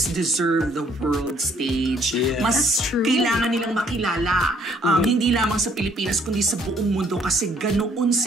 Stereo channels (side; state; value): both; normal; correlation 0.64